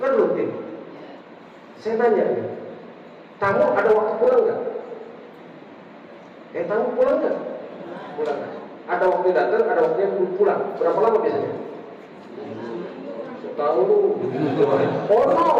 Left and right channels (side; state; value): both; identical; correlation 1.00